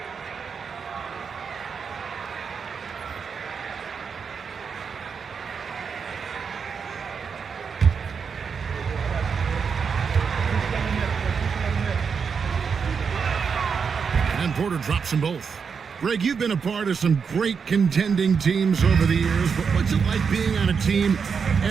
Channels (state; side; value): quieter; left; 6.0 dB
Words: Porter drops them both. Greg, you've been a part of some great contending teams over the years, but what's it like being on a team